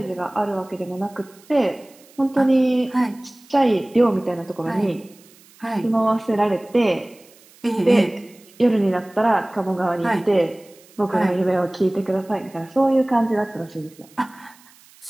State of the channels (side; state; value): right; noise; hiss, 27 dB below the sound